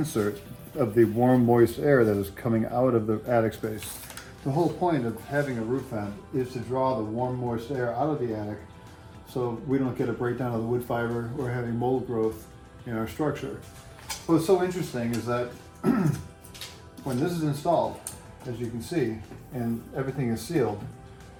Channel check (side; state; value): both; identical; correlation 1.00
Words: of the warm, moist air that is coming out of the attic space. The whole point of having a roof vent is to draw the warm, moist air out of the attic so we don't get a breakdown of the wood fiber or having mold growth in our structure. What's so interesting is that when this is installed, as you can see, and everything is sealed,